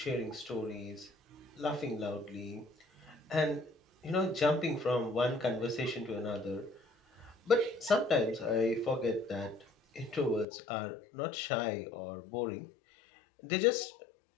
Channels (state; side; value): drops out; right; at 10.5 s